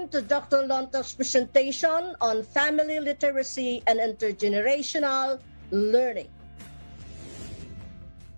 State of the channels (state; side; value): inverted; both; correlation -1.00